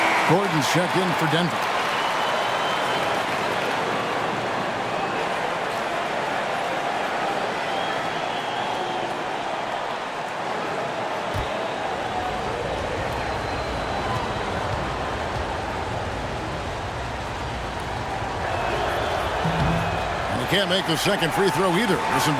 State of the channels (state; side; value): identical; both; correlation 1.00